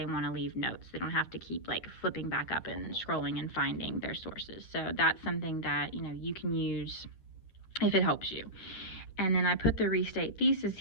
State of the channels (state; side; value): late; right; 9.8 ms